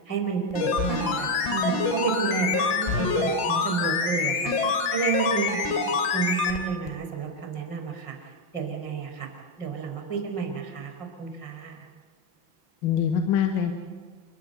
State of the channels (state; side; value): late; right; 5.9 ms